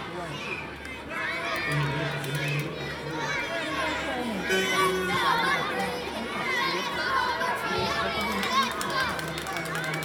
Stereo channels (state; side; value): identical; both; correlation 1.00